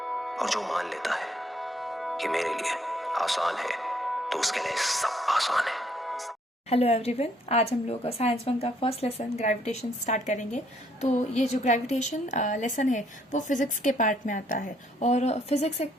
और जो मान लेता है कि मेरे लिए आसान है तो उसके लिए सब आसान है। हेलो एवरीवन, आज हम लोग साइंस वन का फर्स्ट लेसन ग्रेविटेशन स्टार्ट करेंगे। तो ये जो ग्रेविटेशन लेसन है वो फिजिक्स के पार्ट में आता है, और फिजिक्स एक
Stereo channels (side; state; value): both; normal; correlation 0.67